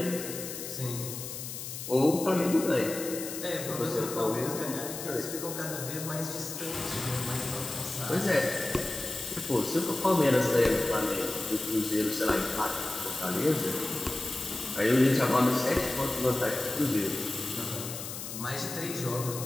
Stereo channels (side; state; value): left; noise; hiss, 8 dB below the sound